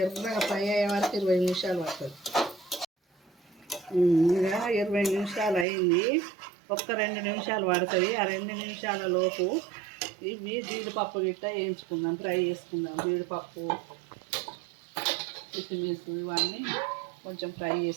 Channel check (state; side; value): drops out; left; at 5.7 s